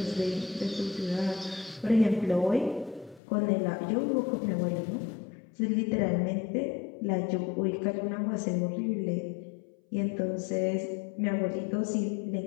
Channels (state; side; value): drops out; right; at 3.2 s